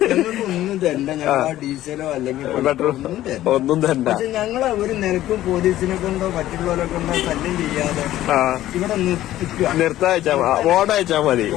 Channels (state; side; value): quieter; right; 14.0 dB